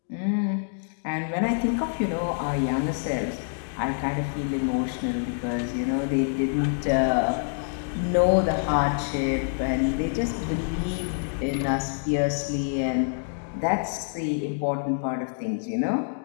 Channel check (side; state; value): right; silent; digital silence